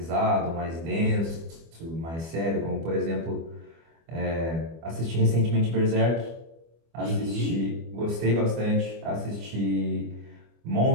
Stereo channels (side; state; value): left; late; 24 ms